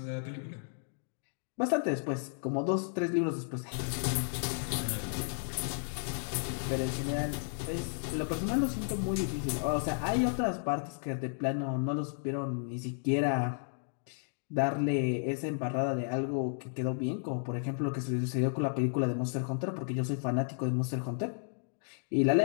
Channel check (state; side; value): silent; right; digital silence